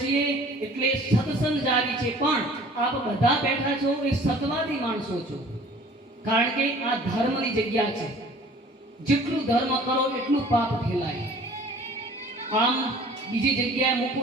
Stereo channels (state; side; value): normal; both; correlation 0.49